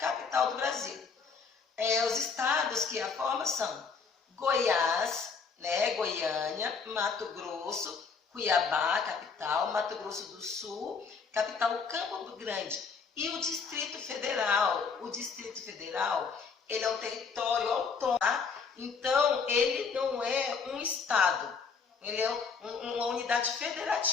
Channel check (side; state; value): right; quieter; 5.4 dB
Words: do Brasil. Os estados que a formam são Goiás, né, Goiânia, Mato Grosso, Cuiabá, capital, Mato Grosso do Sul, capital Campo Grande e o Distrito Federal. O Distrito Federal, ele é um território autônomo, tá? Então ele não é um estado, ele é uma unidade